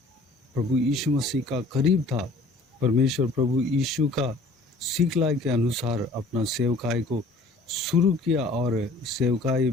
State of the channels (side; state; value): right; quieter; 3.1 dB